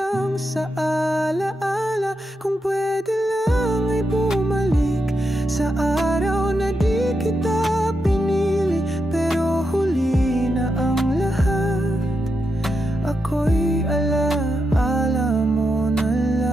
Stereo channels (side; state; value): both; normal; correlation 0.85